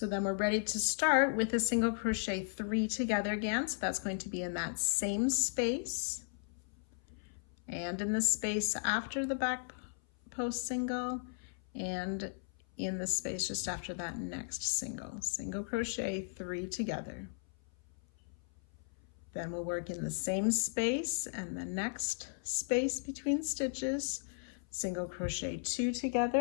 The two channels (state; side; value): silent; right; 54 dB below the other